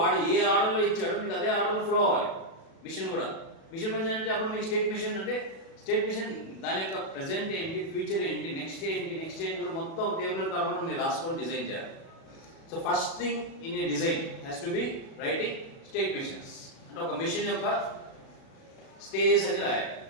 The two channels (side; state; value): right; late; 37 ms